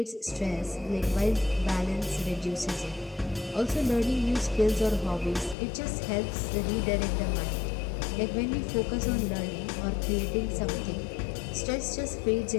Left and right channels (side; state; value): right; drops out; at 5.6 s